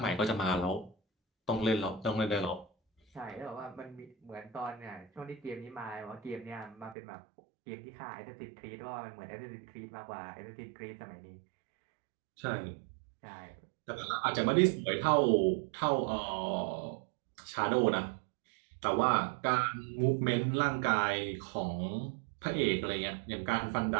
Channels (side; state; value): left; drops out; at 7.0 s